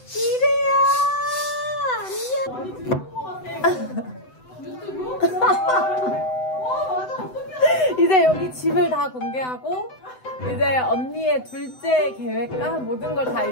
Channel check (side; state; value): right; late; 7.9 ms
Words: 이래야. 이제 여기 집을 다 공개하고 이제 언니의 둘째 계획과 모든 걸 다